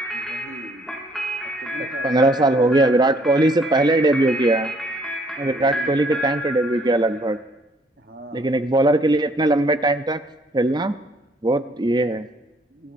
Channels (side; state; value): both; normal; correlation 0.63